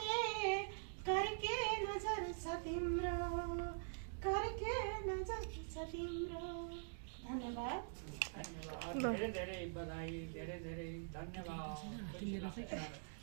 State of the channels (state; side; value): silent; left; digital silence